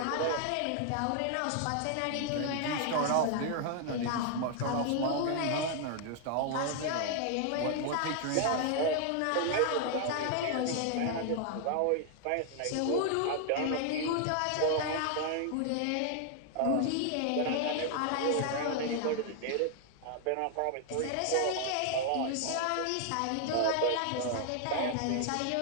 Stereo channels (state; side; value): different; both; correlation 0.00